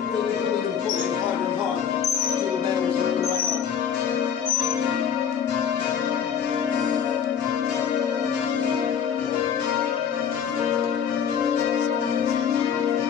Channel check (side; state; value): right; quieter; 8.0 dB